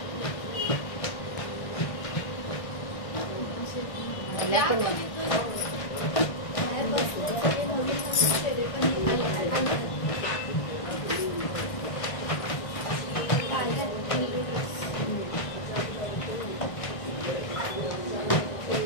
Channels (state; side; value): late; right; 1.6 ms